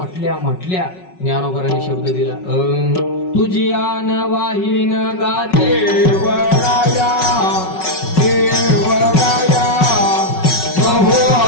ज्ञानोबारांनी शब्द दिला. तुझी आन वाहीन गा देवराया देवराया बहु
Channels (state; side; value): late; right; 5.4 ms